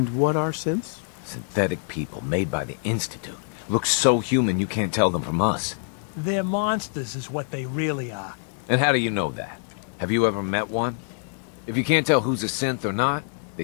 what are synths? Synthetic people made by the Institute. Look so human you can't tell them from us. They're monsters is what they really are. And how do you know that? Have you ever met one? If you can't tell who's a synth or not, they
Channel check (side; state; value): right; silent; digital silence